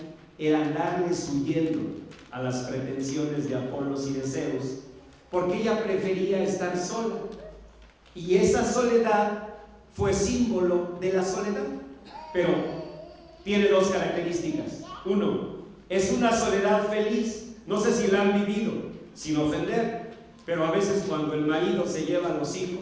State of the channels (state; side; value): identical; both; correlation 1.00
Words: era darles huyendo a las pretensiones de Apolos y de Zeus, porque ella prefería estar sola, y esa soledad fue símbolo de la soledad. Pero tiene 2 características. Uno, es una soledad feliz. No sé si la han vivido, sin ofender, pero a veces cuando el marido se lleva a los